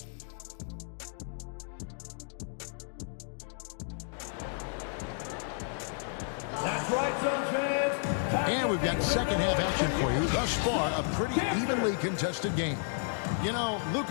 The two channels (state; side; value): silent; right; digital silence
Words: That's right, Suns fans. And we've got second half action for you. Thus far, a pretty evenly contested game. You know,